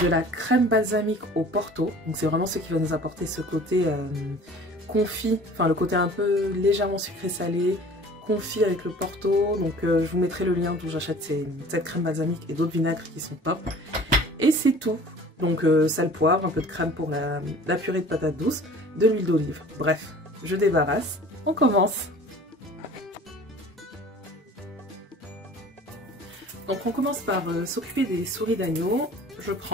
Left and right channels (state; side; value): normal; both; correlation 0.46